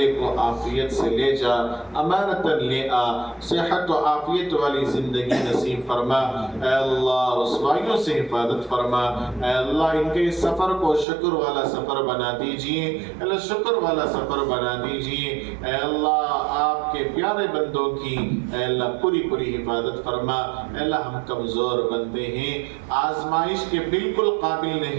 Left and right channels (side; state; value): left; drops out; at 11.1 s